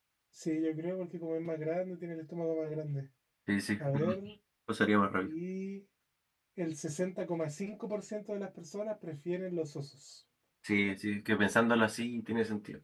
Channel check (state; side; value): identical; both; correlation 1.00